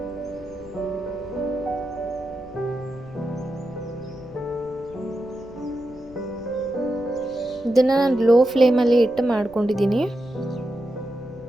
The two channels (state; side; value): noise; left; rumble, 22 dB below the sound